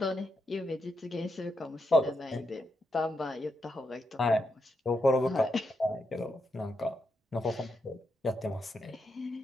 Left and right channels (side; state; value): both; normal; correlation 0.83